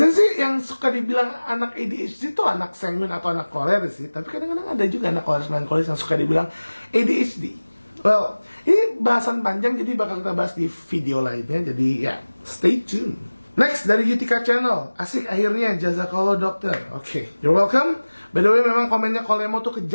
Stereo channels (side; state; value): both; inverted; correlation -1.00